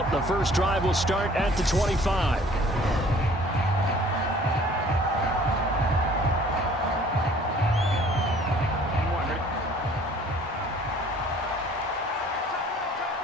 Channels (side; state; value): both; normal; correlation 0.53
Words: The first drive will start at the 25.